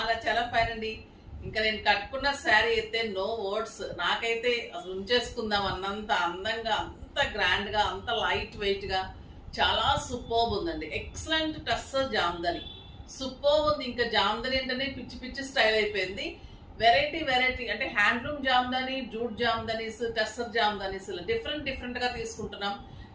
చాలా ఫైన్ అండి. ఇంకా నేను కట్టుకున్న శారీ అయితే నో వర్డ్స్. నాకైతే అసలు ఉంచేసుకుందాం అన్నంత అందంగా, అంత గ్రాండ్ గా, అంత లైట్ వెయిట్ గా, చాలా సూపర్బ్ ఉందండి. ఎక్సలెంట్ టస్సర్ జామ్దని, సూపర్బ్ ఉంది. ఇంకా జామ్దని ఏంటనే పిచ్చి పిచ్చి స్టైల్ అయిపోయింది. వెరైటీ వెరైటీ అంటే handloom Jamdani, jute jamdanis, tussar jamdanis different గా తీసుకుంటున్నాం.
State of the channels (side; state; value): both; identical; correlation 1.00